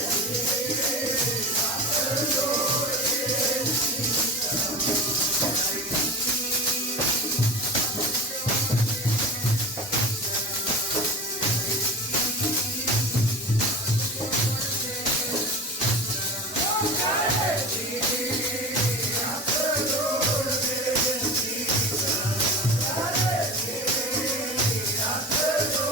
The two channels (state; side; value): normal; both; correlation 0.30